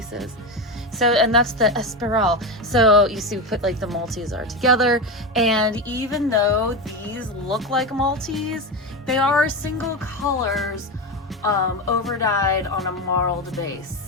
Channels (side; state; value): both; normal; correlation 0.17